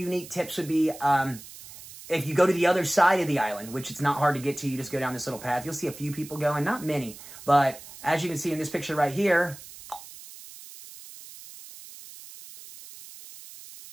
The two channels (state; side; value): noise; right; hiss, 16 dB below the sound